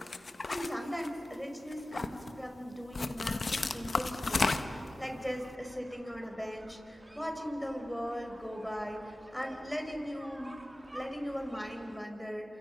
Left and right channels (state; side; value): normal; both; correlation 0.96